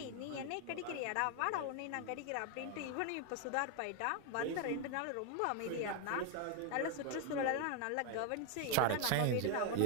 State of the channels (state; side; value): different; both; correlation 0.01